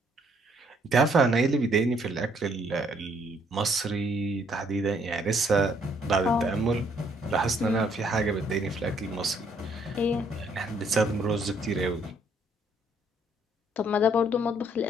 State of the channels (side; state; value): both; normal; correlation 0.67